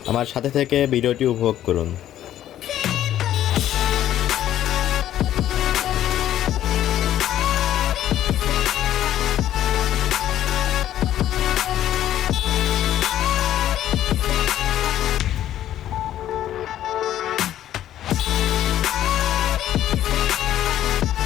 আমার সাথে থেকে ভিডিওটি উপভোগ করুন।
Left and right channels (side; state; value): right; quieter; 12.0 dB